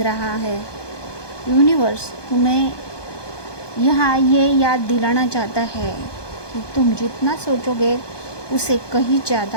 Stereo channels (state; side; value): late; right; 1.2 ms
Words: रहा है। यूनिवर्स तुम्हें यहाँ ये याद दिलाना चाहता है कि तुम जितना सोचोगे उससे कहीं